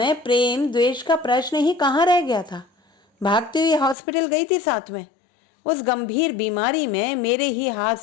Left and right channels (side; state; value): right; drops out; at 4.0 s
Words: प्रेम द्वेष का प्रश्न ही कहाँ रह गया था। भागती हुई हॉस्पिटल गई थी साथ में। उस गंभीर बीमारी में मेरे ही हाथ